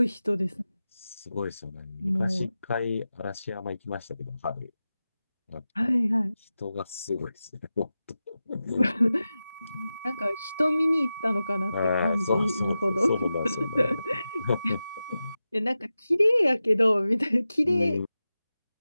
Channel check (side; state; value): both; inverted; correlation -0.93